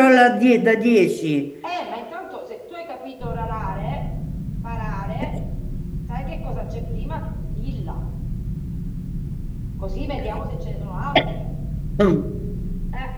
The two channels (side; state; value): both; identical; correlation 1.00